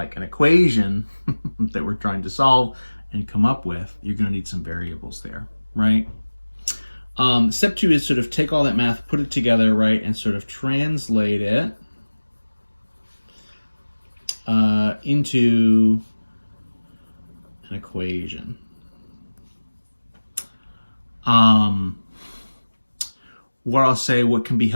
an equation that we're trying to solve and come up with, you're going to need some variables there, right? Step 2 is sort of take all that math, put it together, right, and sort of translate it into an equation. What I'll say, what can be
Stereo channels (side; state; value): both; inverted; correlation -1.00